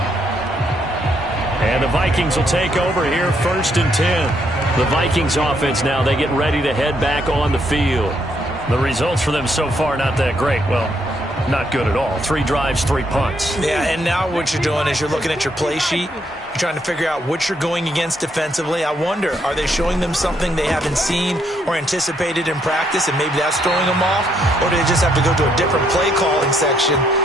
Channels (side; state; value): both; normal; correlation 0.73